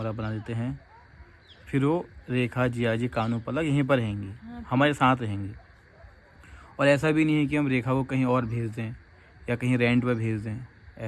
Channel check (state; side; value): identical; both; correlation 1.00